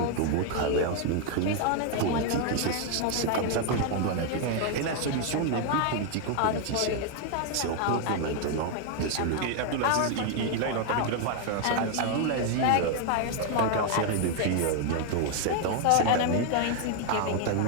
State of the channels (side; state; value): both; different; correlation 0.00